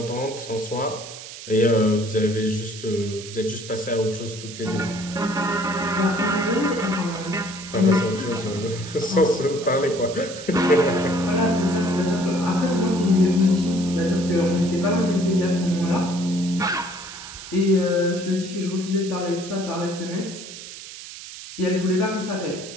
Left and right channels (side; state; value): right; noise; hiss, 13 dB below the sound